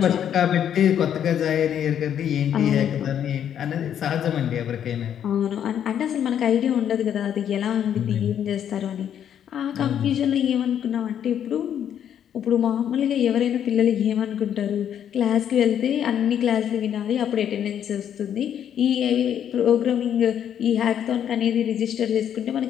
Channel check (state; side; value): quieter; right; 9.4 dB